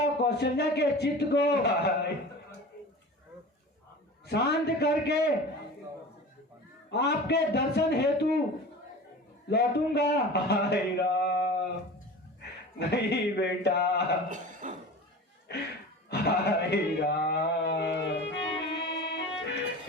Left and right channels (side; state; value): both; normal; correlation 0.36